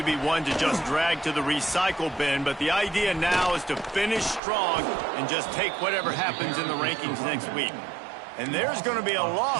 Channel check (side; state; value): left; drops out; at 4.4 s